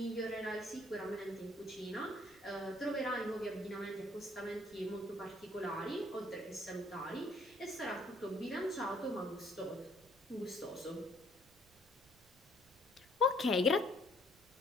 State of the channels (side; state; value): right; noise; rumble, 27 dB below the sound